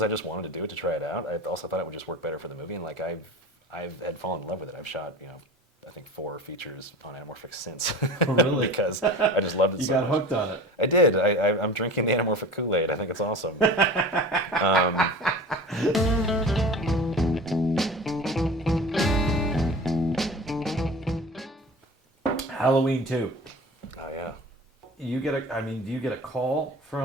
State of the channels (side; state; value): both; normal; correlation 0.36